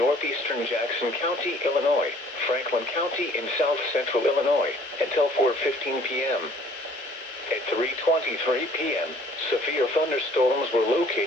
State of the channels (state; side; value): normal; both; correlation 0.56